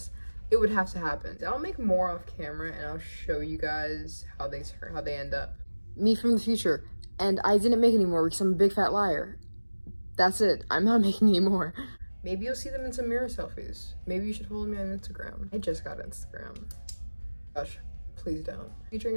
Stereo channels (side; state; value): both; inverted; correlation -1.00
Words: it would have to happen. I'll make more off camera and I'll show you guys how they end up. Me from the future. And I didn't make any more because I'm a big fat liar. That's it. I'm not making any more. Maybe you'll see them in some mirror selfies. Maybe you should follow me on Instagram. I just got Instagram. Gosh, please don't. Featuring